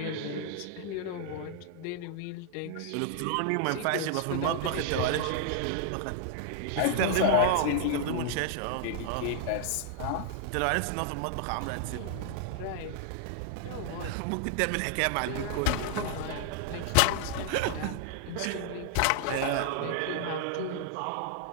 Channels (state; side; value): different; both; correlation 0.00